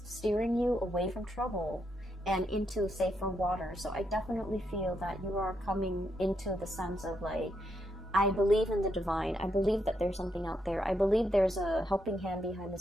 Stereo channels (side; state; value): both; normal; correlation 0.80